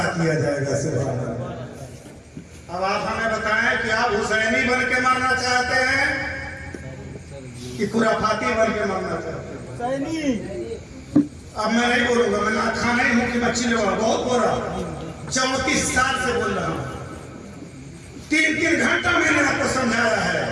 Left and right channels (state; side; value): identical; both; correlation 1.00